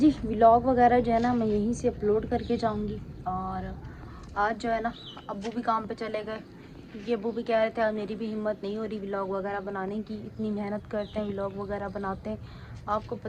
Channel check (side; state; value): both; identical; correlation 1.00